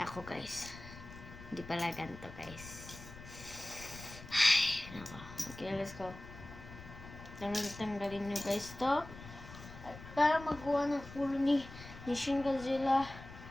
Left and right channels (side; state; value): left; noise; rumble, 15 dB below the sound